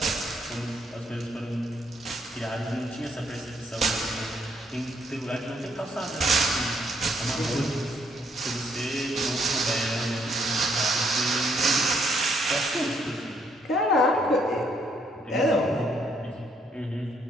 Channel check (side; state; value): both; normal; correlation 0.70